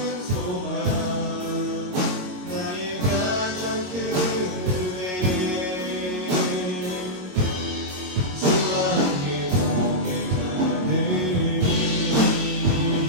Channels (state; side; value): late; left; 22 ms